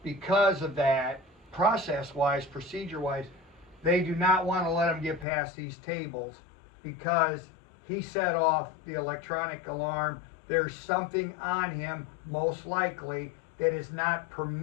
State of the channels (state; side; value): drops out; right; at 5.2 s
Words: Because of that, process-wise, procedure-wise, they do not want to let him get past these tables because he set off the electronic alarm. There's something on him, most likely, that is not